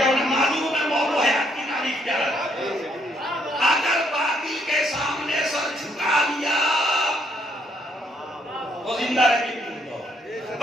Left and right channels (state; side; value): normal; both; correlation 0.70